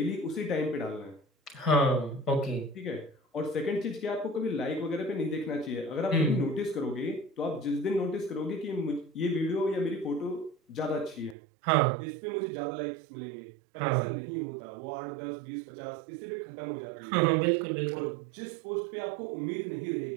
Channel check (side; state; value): left; drops out; at 11.4 s